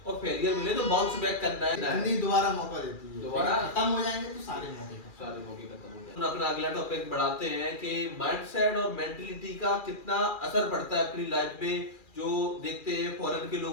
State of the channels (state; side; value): late; right; 2.4 ms